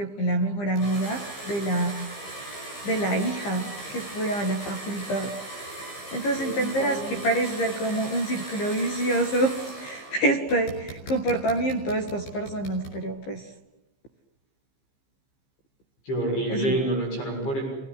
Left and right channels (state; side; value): late; right; 15 ms